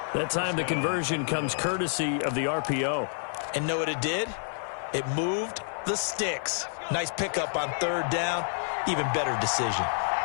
That time the conversion comes courtesy of the RPO. And know what it did? It moved the sticks. Nice pickup on 3rd down. Even better decision.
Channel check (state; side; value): silent; right; 57 dB below the other